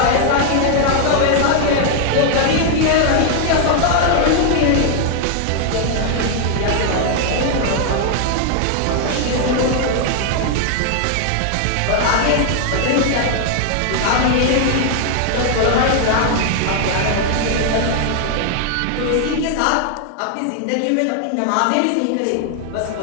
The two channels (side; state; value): both; different; correlation 0.00